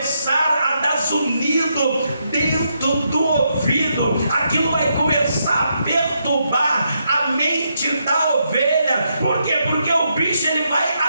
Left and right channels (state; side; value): inverted; both; correlation -0.80